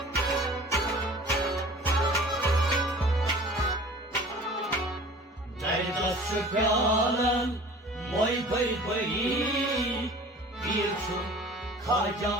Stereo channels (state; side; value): normal; both; correlation 0.44